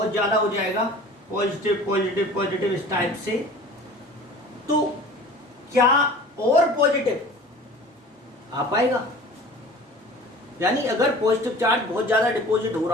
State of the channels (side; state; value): both; normal; correlation 0.43